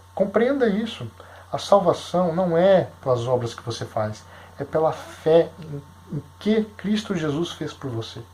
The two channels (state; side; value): identical; both; correlation 1.00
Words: Compreenda isso. A salvação não é pelas obras que você faz, é pela fé em que Cristo Jesus fez por você.